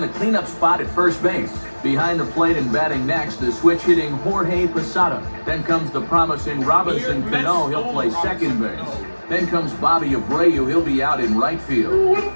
the cleanup spot at first base. Behind the plate and batting next, the switch-hitting Jorge Posada. Then comes the promising Robinson Cano. He'll play second base. Then comes Bobby Abreu. He'll be out in right field.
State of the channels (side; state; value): both; inverted; correlation -1.00